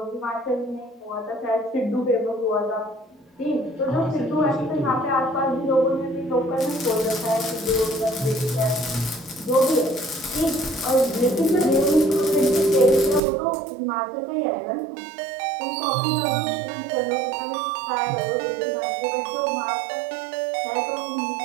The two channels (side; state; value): left; drops out; at 13.2 s